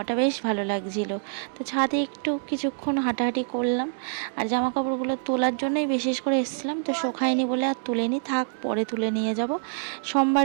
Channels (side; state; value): left; silent; digital silence